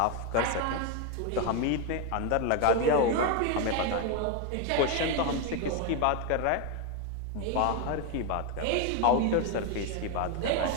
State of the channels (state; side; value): different; both; correlation 0.01